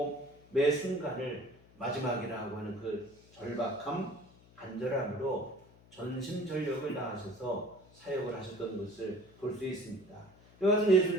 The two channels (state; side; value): noise; left; hum, 25 dB below the sound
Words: 매 순간을 마지막이라고 하는 그 절박함, 간절함으로 전심전력을 다하셔서 사역을 하셨던 것을 볼 수 있습니다. 이와 같은